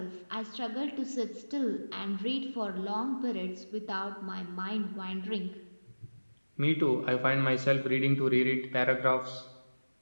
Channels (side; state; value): both; inverted; correlation -1.00